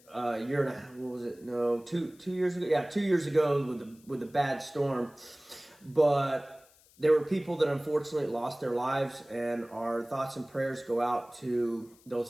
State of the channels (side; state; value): left; noise; hiss, 28 dB below the sound